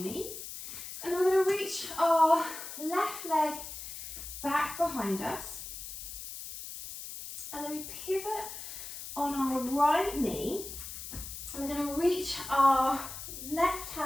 knees. And we're going to reach our left leg back behind us. And then we pivot on our right knee. And we're going to reach our left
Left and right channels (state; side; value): noise; left; hiss, 9 dB below the sound